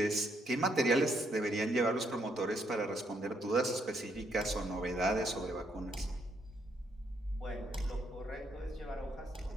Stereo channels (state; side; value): normal; both; correlation 0.74